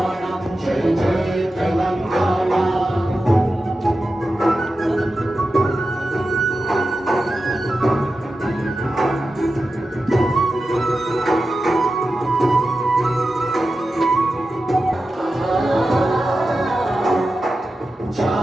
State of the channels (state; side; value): normal; both; correlation 0.92